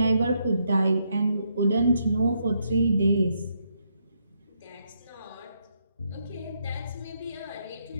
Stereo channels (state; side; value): inverted; both; correlation -0.77